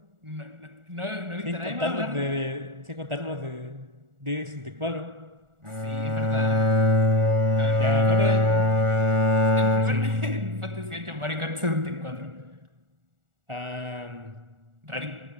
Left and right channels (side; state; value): left; late; 1.4 ms